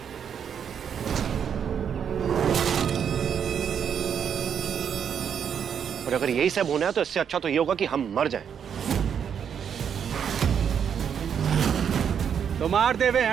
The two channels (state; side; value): quieter; left; 7.9 dB